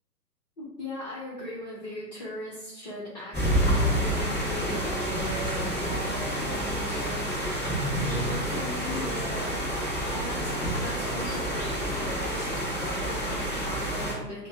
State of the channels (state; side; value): normal; both; correlation 0.09